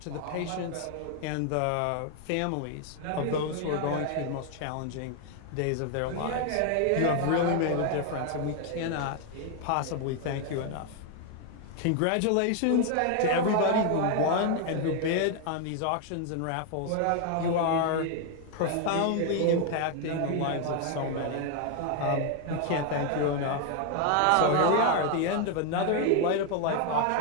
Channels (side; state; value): both; different; correlation 0.01